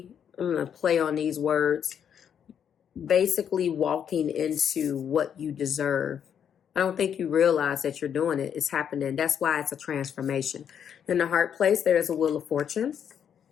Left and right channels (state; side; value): quieter; right; 8.4 dB